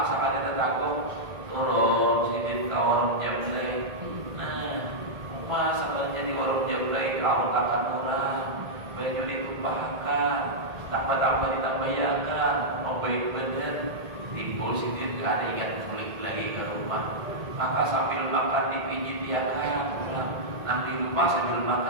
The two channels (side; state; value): left; late; 1.8 ms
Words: sekali tetangga turun sidit ke warung jemlei. Rumah sampai jadi warung jemlei kau akan orang baju ditumpahkan, tambah-tambah ditambahiakan, mau baik bener timbul sidit gak ada ingat balik lagi ke rumah. Maka sambil makan dipijit dia kan, nang di rumah sambil